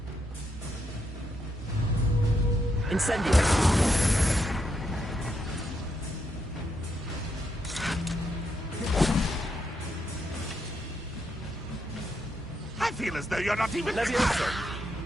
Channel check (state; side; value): normal; both; correlation 0.80